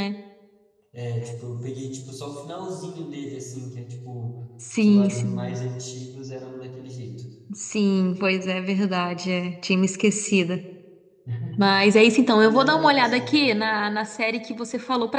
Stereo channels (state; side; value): identical; both; correlation 1.00